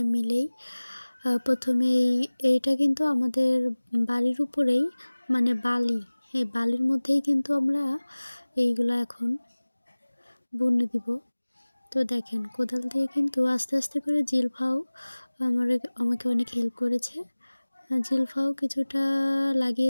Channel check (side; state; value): both; inverted; correlation -1.00